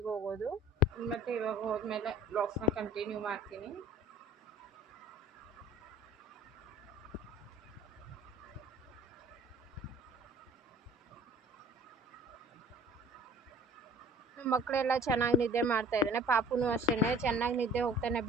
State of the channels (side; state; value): both; normal; correlation 0.49